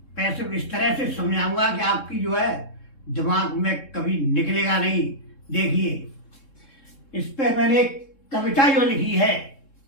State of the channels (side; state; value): right; late; 3.7 ms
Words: पैसिव इस तरह से समझाऊंगा कि आपकी जो है दिमाग में कभी निकलेगा नहीं। देखिए, इस पे मैंने एक कविता जो लिखी है